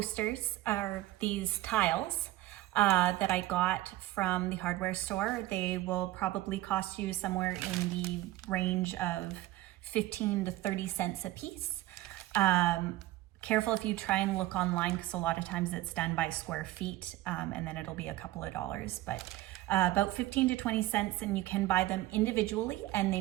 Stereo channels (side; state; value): left; quieter; 16.5 dB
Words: or these tiles, that I got from the hardware store. They will probably cost you somewhere in the range of 15 to 30 cents a piece. Careful if you try and look online, because a lot of times it's done by square feet, and then it'll be a couple of dollars, but about 15 to 20 cents, and you can buy them individually, and they